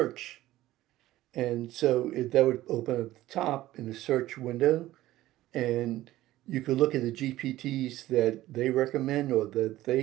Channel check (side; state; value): left; quieter; 15.6 dB